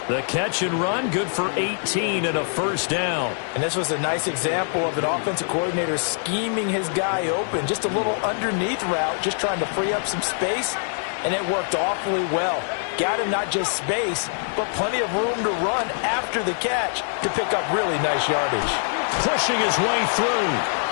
The catch and run, good for 18 and a first down. And this was a nice example of an offensive coordinator scheming his guy open. Just a little underneath route, just trying to free up some space, and it worked awfully well. Got him not just space, but plenty of room to run after the catch to pick up really nice yardage. Pushing his way through.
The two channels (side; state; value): right; silent; 63 dB below the other